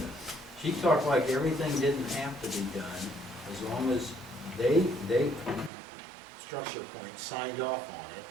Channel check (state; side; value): drops out; left; at 5.7 s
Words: She talked like everything didn't have to be done, as long as they structure point signed off on it,